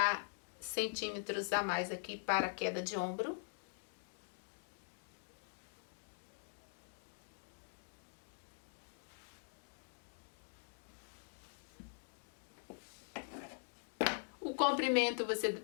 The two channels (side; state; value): right; silent; digital silence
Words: centímetros a mais aqui para a queda de ombro. O comprimento você